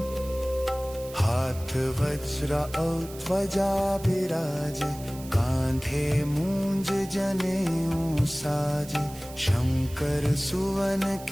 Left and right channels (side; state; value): right; noise; hiss, 17 dB below the sound